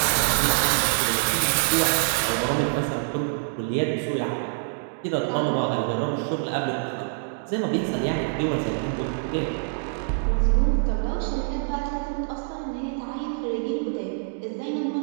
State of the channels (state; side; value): silent; left; digital silence